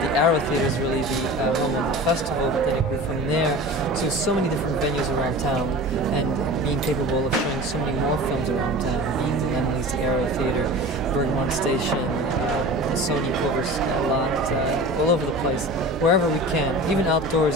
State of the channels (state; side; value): normal; both; correlation 0.35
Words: Arrow Theater is really the festival, but then it grew from there to so many different venues around town, and being capable of showing so many more films around town. Being the Emily's Arrow Theater, Bergmont Station, the Sony Covers a lot, all over the place, wherever we can, even